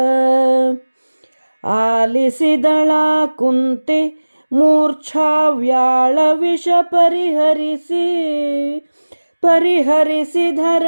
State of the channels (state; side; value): inverted; both; correlation -1.00